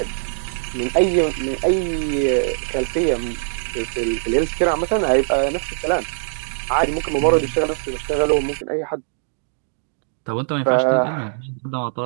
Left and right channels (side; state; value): left; silent; digital silence